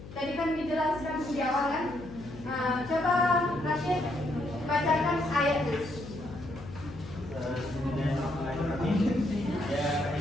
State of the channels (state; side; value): noise; left; hum, 14 dB below the sound